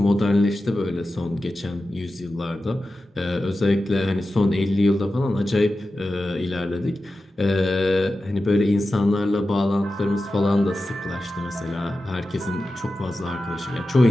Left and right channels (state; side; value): normal; both; correlation 0.93